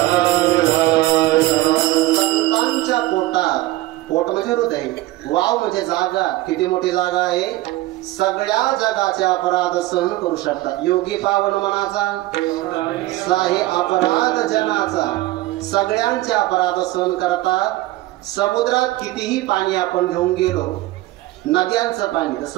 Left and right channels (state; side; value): quieter; left; 17.5 dB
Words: संतांच्या पोटात. पोट म्हणजे हृदय. वाव म्हणजे जागा. किती मोठी जागा आहे. सगळ्या जगाचे अपराध सहन करू शकतात. योगी पावन मनाचा साहे अपराध जनाचा. सगळ्यांचे अपराध सहन करतात. समुद्रात कितीही पाणी आपण घेऊन गेलो नद्यांचं पाणी तर